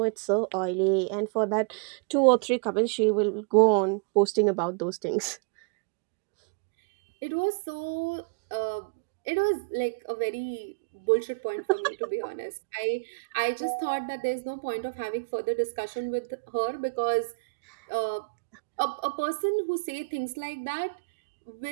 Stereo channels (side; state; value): left; quieter; 35.9 dB